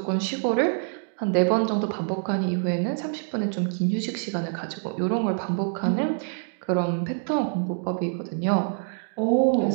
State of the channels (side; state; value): left; silent; 61 dB below the other